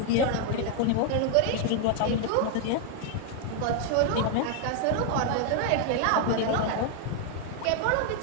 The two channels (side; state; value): both; different; correlation 0.00